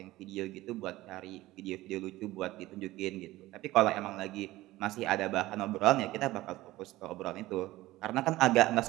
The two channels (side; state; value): left; quieter; 17.4 dB